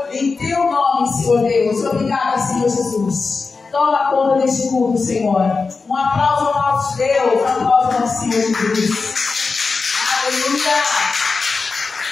em Teu nome, Senhor Deus. Obrigada, Senhor Jesus. Toma conta deste culto, Senhor. Um aplauso ao nosso Deus, um aplauso ao nosso Senhor Jesus. Aleluia.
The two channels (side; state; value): right; quieter; 4.4 dB